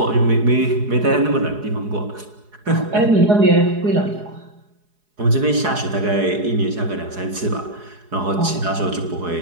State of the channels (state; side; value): late; left; 4.8 ms